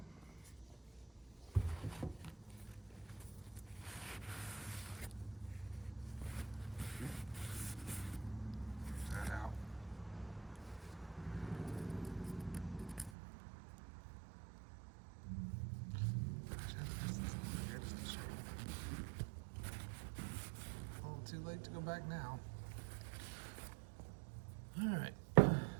That out. A little too late to go back now. All right,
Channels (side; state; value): left; drops out; at 13.1 s